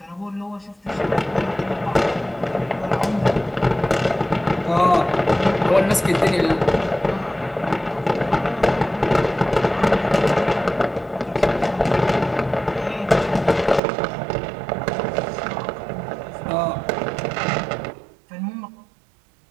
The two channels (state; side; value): drops out; left; at 13.8 s